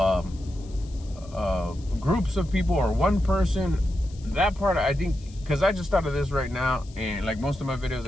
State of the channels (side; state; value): left; noise; hiss, 25 dB below the sound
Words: groups of people or one person. That part, I think, because I just thought of this right now, and like most of my videos,